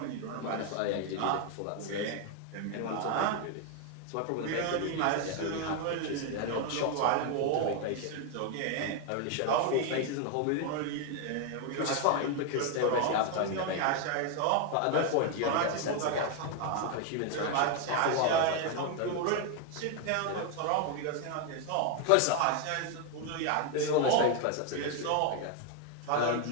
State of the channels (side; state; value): both; different; correlation 0.01